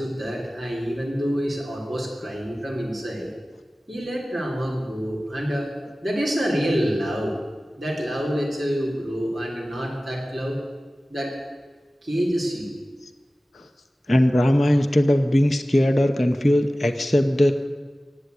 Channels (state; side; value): normal; both; correlation 0.97